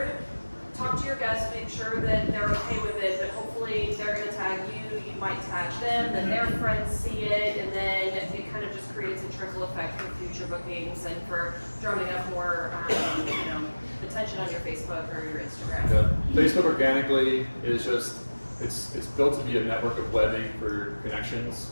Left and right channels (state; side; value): inverted; both; correlation -1.00